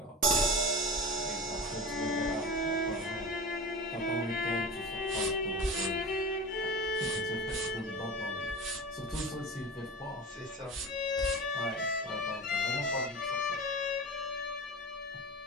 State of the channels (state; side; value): normal; both; correlation 0.32